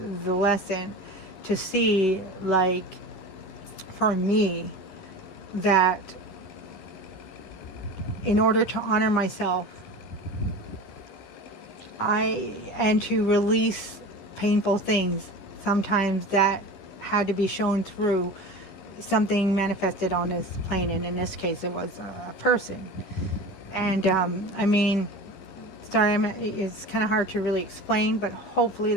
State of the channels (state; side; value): late; right; 11 ms